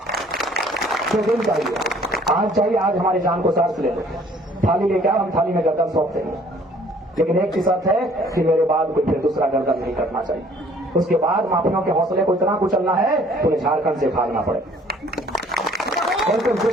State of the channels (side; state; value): both; normal; correlation 0.57